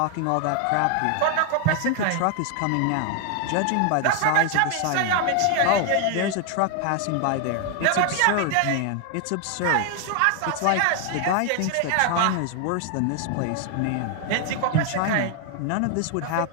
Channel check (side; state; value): both; different; correlation 0.00